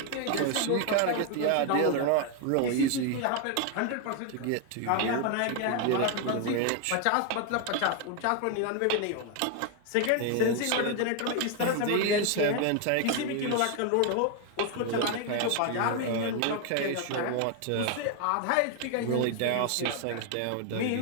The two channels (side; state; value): both; different; correlation 0.01